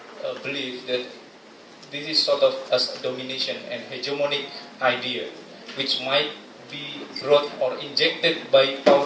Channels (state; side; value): identical; both; correlation 1.00